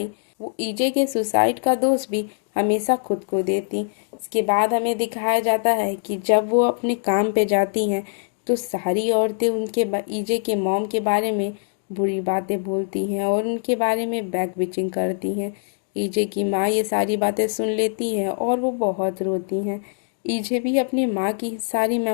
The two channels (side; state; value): right; silent; digital silence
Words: वो ईजे के सुसाइड का दोष भी हमेशा खुद को देती। इसके बाद हमें दिखाया जाता है कि जब वो अपने काम पे जाती हैं तो सारी औरतें उनके ईजे के मॉम के बारे में बुरी बातें बोलती हैं और उनके बारे में बैक बिचिंग करती हैं। ईजे की माँ ये सारी बातें सुन लेती हैं और वो बहुत रोती हैं। ईजे भी अपनी माँ की सारी